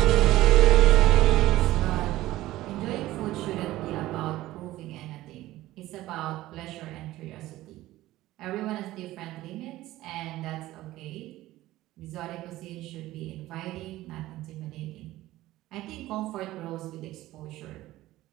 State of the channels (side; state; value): left; quieter; 16.2 dB